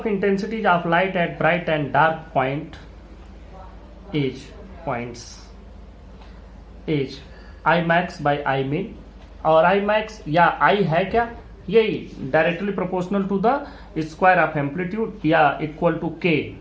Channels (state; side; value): identical; both; correlation 1.00